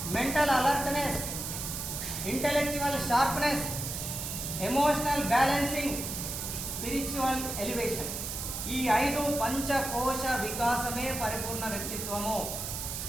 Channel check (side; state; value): right; noise; hiss, 5 dB below the sound